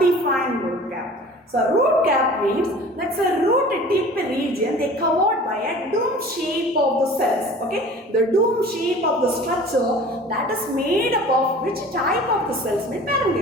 root cap? So root cap means that's a root tip region they covered by a dome shape of the cells. Okay, the dome shape of the structure that is made up of which type of the cells?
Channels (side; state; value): both; normal; correlation 0.43